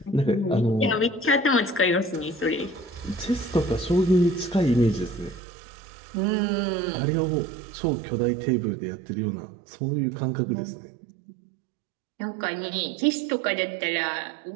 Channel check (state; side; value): drops out; left; at 5.4 s